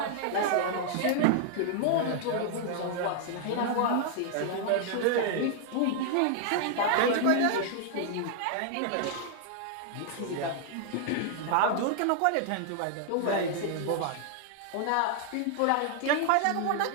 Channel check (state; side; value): different; both; correlation 0.00